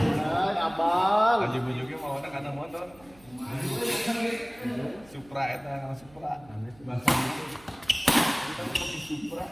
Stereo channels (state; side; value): noise; right; hum, 26 dB below the sound